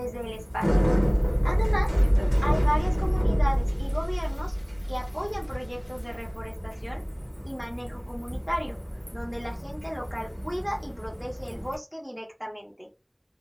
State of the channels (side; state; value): both; identical; correlation 1.00